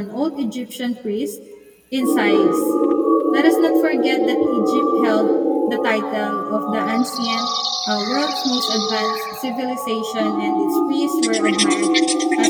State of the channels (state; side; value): identical; both; correlation 1.00